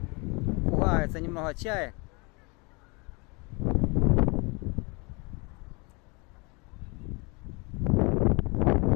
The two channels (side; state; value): right; quieter; 29.3 dB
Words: Пугаются немного чаек.